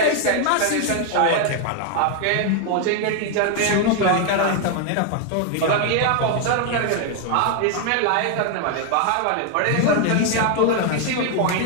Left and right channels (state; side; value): different; both; correlation 0.00